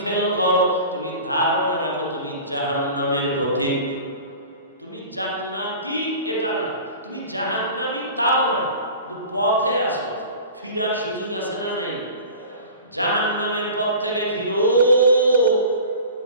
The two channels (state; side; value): inverted; both; correlation -0.39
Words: ফেল করো, তুমি ধারণা রাখো তুমি জাহান্নামের পথিক। তুমি জান্নাতি এটা না, তুমি জাহান্নামী তাও না, কিন্তু পথে আসো, ফিরার সুযোগ আছে না নাই? জাহান্নামের পথ থেকে ফিরো।